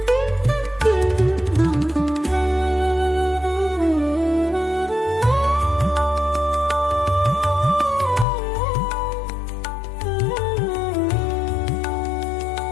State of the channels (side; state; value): right; drops out; at 8.2 s